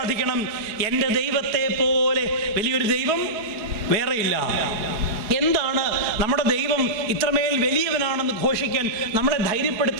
എൻ്റെ ദൈവത്തെ പോലെ വലിയൊരു ദൈവം വേറെയില്ല. എന്താണ് നമ്മുടെ ദൈവം ഇത്രമേൽ വലിയവനാണെന്ന് ഘോഷിക്കാൻ നമ്മളെ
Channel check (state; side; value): late; left; 4.7 ms